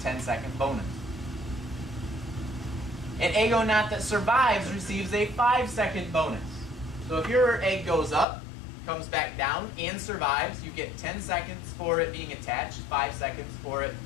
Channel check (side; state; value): right; drops out; at 8.2 s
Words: bonus. An eggonaut that survives receives a 5-second bonus. So if your egg goes up, comes back down, and survives, you get 10 seconds for it being attached, 5 seconds for it